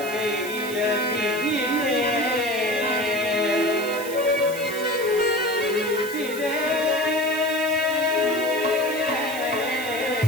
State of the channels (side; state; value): right; noise; hiss, 12 dB below the sound